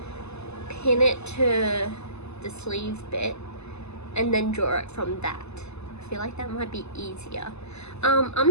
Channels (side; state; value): right; late; 0.80 ms